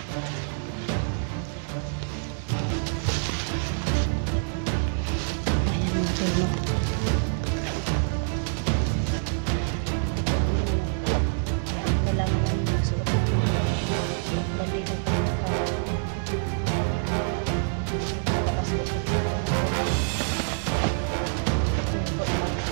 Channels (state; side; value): silent; left; digital silence